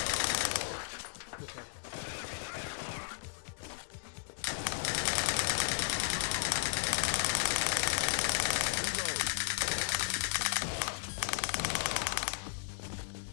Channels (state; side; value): silent; right; digital silence